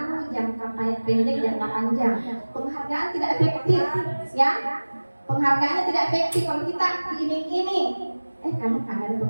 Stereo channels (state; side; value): inverted; both; correlation -1.00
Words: jangka pendek, jangka panjang. Penghargaan tidak efektif, ya. Penghargaannya tidak efektif kalau kita diiming-iming. Kamu kan ada